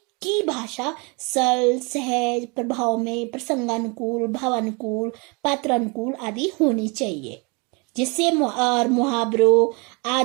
की भाषा सरल, सहज, प्रभाव में प्रसंगानुकूल, भावानुकूल, पात्रानुकूल आदि होनी चाहिए, जिससे मुहावरों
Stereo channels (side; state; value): left; quieter; 30.7 dB